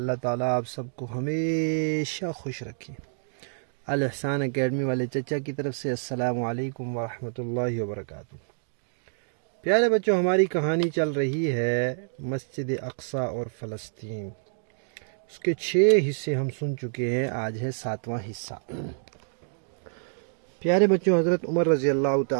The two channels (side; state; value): left; silent; digital silence